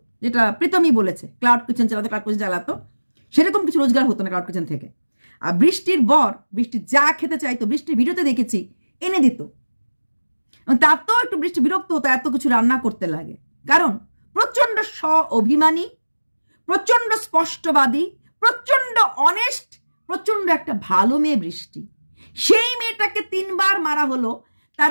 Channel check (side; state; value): both; inverted; correlation -1.00